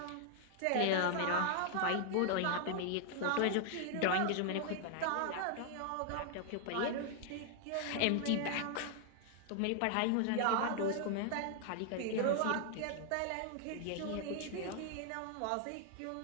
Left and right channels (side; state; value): both; different; correlation 0.00